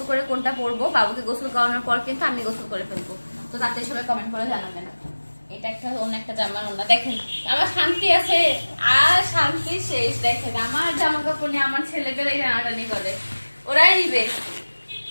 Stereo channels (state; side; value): inverted; both; correlation -1.00